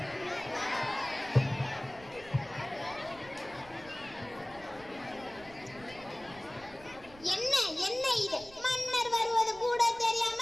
என்ன என்ன இது? மன்னர் வருவது கூட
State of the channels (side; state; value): right; noise; rumble, 21 dB below the sound